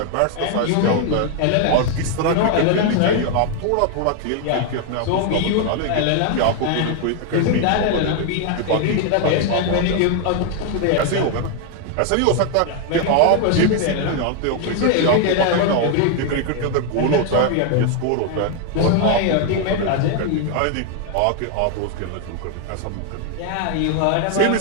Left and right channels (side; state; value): both; different; correlation 0.01